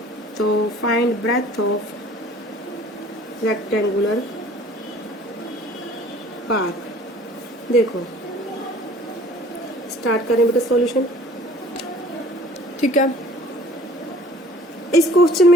तो find breadth of rectangular park. देखो स्टार्ट करें बेटा सॉल्यूशन, ठीक है। इस क्वेश्चन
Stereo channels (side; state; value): both; normal; correlation 0.51